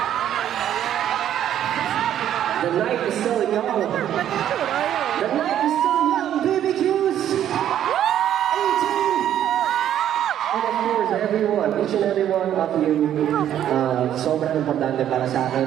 The night is still young. The night is still young. BBQs! 18! And of course, everyone, each and every one of you, sobrang importante para sa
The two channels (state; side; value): quieter; left; 10.8 dB